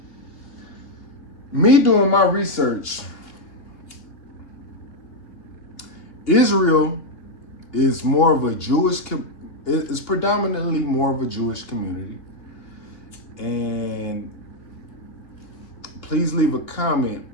Me doing my research, Israel is more of a it's predominantly more of a Jewish community. And please leave a comment.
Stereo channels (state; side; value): late; right; 2.8 ms